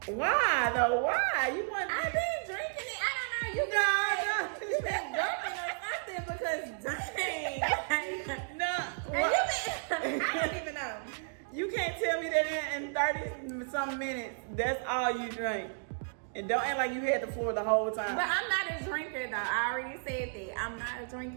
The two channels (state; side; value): silent; left; digital silence